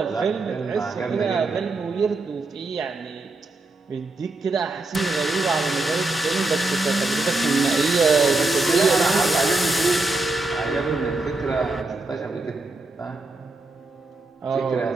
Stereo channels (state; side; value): quieter; left; 3.1 dB